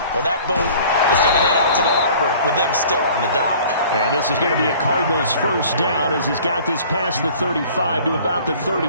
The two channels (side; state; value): both; inverted; correlation -0.49